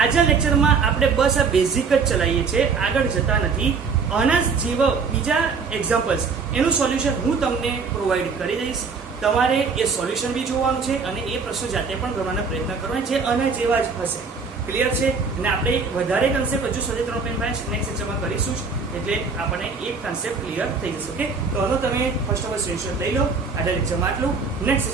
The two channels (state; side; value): quieter; left; 5.1 dB